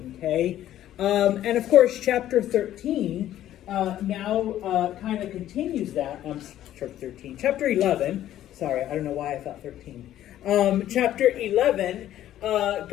okay? And of course, chapter 13 now kind of continues that. Chapter 11, sorry, I don't know why I thought 13. Chapter 11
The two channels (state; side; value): quieter; right; 12.5 dB